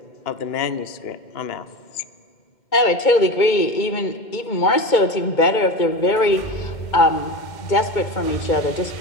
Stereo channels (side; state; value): right; late; 2.2 ms